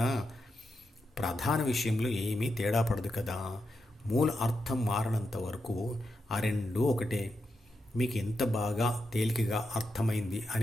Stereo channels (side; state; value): both; normal; correlation 0.86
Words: ప్రధాన విషయంలో ఏమీ తేడా పడదు కదా. మూల అర్థం మారనంత వరకు ఆ రెండూ ఒకటే. మీకు ఎంత బాగా తేలికగా అర్థమైంది